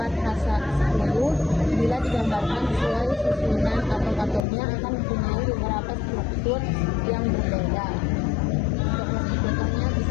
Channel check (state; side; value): drops out; right; at 4.5 s